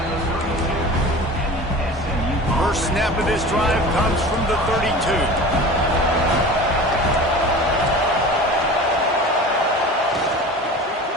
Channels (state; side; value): normal; both; correlation 0.37